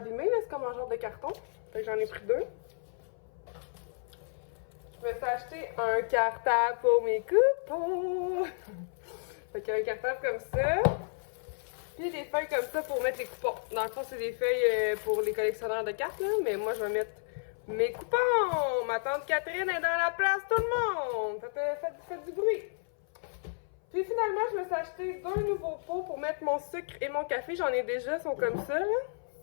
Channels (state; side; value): silent; right; 56 dB below the other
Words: là. C'est comme un genre de carton. Fait que j'en ai pris 2. Je me suis acheté un cartable pour mes coupons. Fait qu'il y a un cartable comme ça. Puis des feuilles comme ça pour mettre les coupons. Dans le fond, c'est des feuilles pour les collectionneurs de cartes, là. Mais moi, je vais mettre mes coupons. Ma tante Catherine est dans la place, tout le monde. Faites du bruit. Puis finalement, je me suis acheté 2 nouveaux pots pour mettre mon sucre et mon café. J'en ai déjà, ils sont comme ça, là.